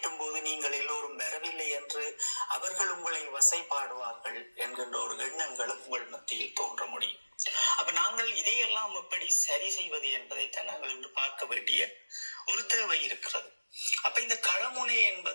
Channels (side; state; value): both; inverted; correlation -1.00